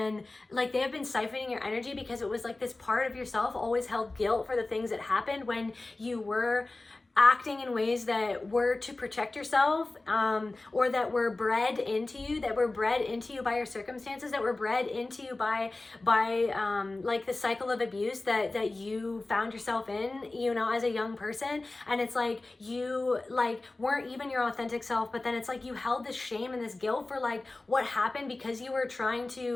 like, they have been siphoning your energy because it was like this part of yourself always held guilt for the things that happened when you were acting in ways that were to protect yourself, or that were bred into you by your circumstances, that were bred into you by like the cycle of abuse that you found yourself in, you know, as a young person. And it's like you like weren't even your authentic self, but then it's like you held this shame and this guilt for like what happened because you were trying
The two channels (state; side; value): quieter; right; 3.1 dB